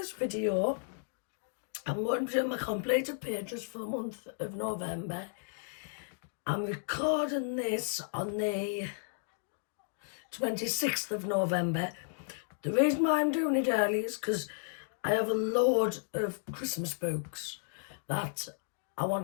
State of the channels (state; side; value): silent; right; digital silence